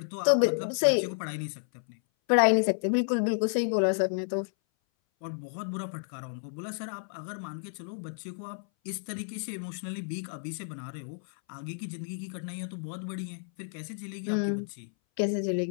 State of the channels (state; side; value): silent; right; 57 dB below the other